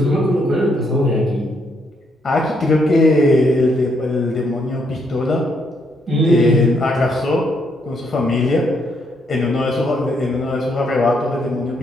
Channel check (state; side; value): normal; both; correlation 0.74